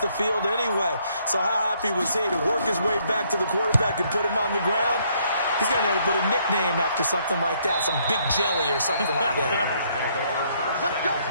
field anyway. So how happy was he to work his way back to the quarterback and put him on the ground? He's going to have to put a nickname after something like that, some Big Jelly or something like that. Let's go.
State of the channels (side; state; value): both; inverted; correlation -0.69